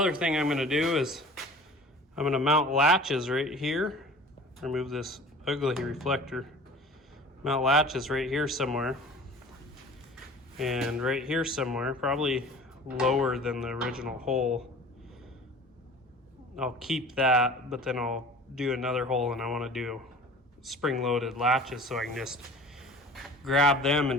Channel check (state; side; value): normal; both; correlation 0.43